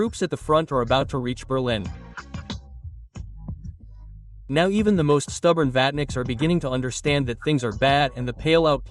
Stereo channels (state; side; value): identical; both; correlation 1.00